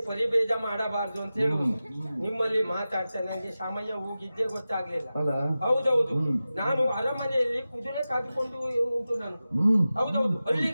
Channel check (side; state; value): both; inverted; correlation -0.94